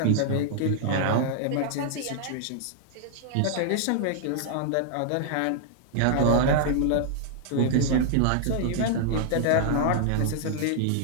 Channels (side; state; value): both; different; correlation -0.01